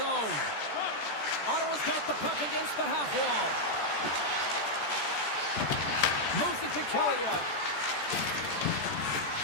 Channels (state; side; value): late; right; 14 ms